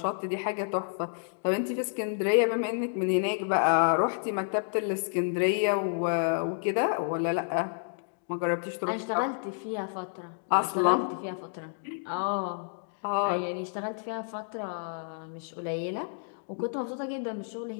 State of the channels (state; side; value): silent; right; digital silence